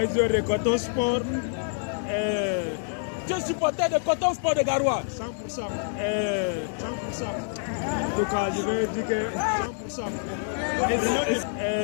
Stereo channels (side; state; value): right; silent; 60 dB below the other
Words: joueur de Coton Sport. Tu es supporter de Coton Sport de Garoua. 100%. 100%. En tout cas, je vais dire que 100%.